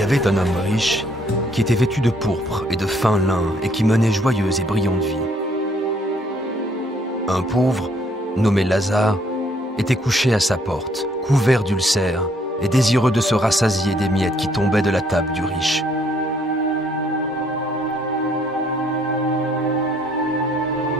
avait un homme riche qui était vêtu de pourpre et de fin lin et qui menait joyeuse et brillante vie. Un pauvre, nommé Lazare, était couché à sa porte, couvert d'ulcères et désireux de se rassasier des miettes qui tombaient de la table du riche.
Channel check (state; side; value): normal; both; correlation 0.66